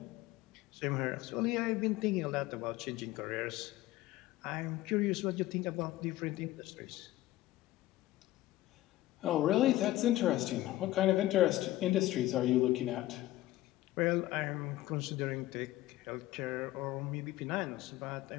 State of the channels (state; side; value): quieter; right; 16.0 dB